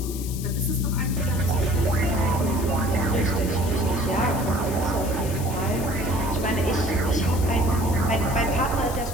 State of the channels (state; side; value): noise; left; hiss, 12 dB below the sound